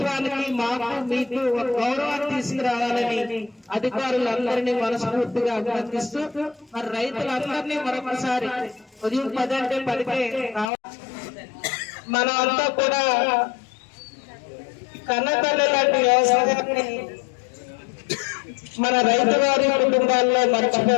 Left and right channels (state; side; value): drops out; right; at 10.7 s